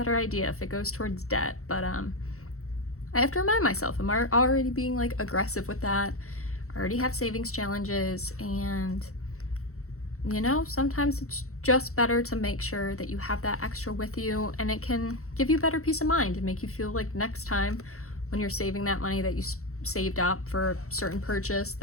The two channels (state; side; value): late; right; 0.64 ms